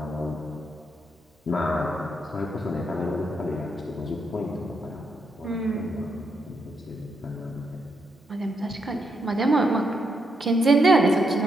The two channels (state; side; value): normal; both; correlation 0.79